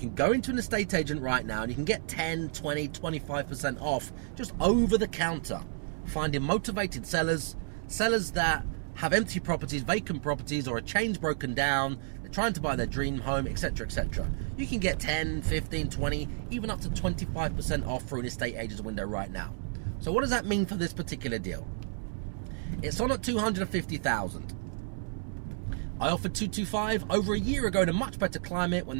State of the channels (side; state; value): left; silent; digital silence